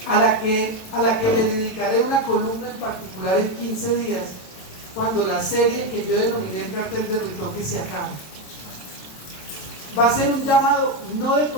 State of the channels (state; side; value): late; right; 27 ms